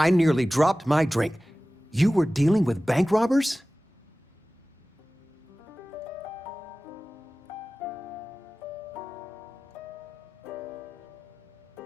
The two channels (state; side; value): normal; both; correlation 0.97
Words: nearly dropped my drink. You were dealing with bank robbers?